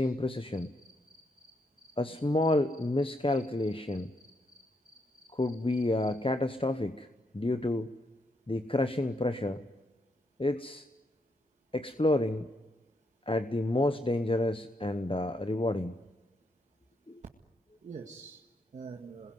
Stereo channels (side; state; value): both; normal; correlation 0.77